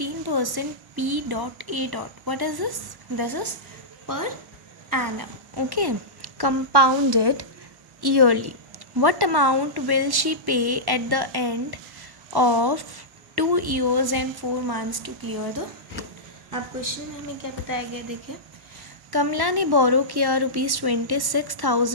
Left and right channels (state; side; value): late; left; 1.1 ms